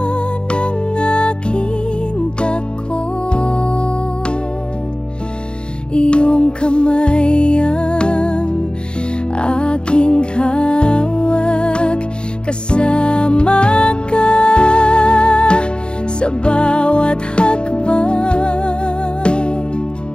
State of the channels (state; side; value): late; right; 0.051 ms